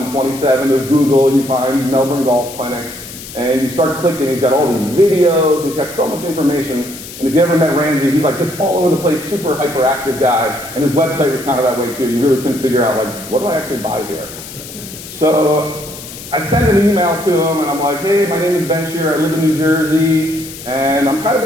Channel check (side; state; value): left; noise; hiss, 13 dB below the sound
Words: of Google, you find Melbourne Golf Clinic, and you start clicking. He's got all these videos. He's got so much information. And if you ever met Ramsey, he's like this all over the place, super hyperactive guy. And his website was kind of that way too. You really couldn't figure out, like, what do I actually buy here? So I sent an email to him, and I'm like, hey, my name is Ben Shear. I live in New Jersey, and I'm kind of